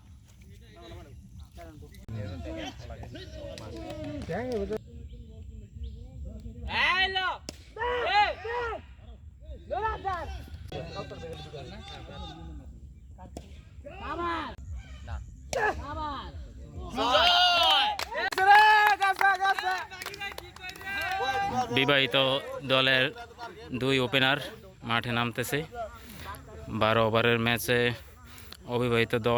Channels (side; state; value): both; identical; correlation 1.00